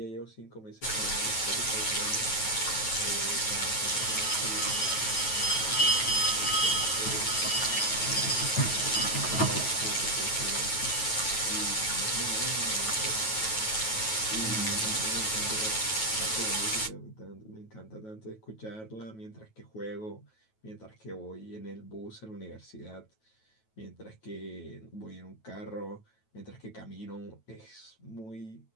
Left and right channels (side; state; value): right; late; 9.2 ms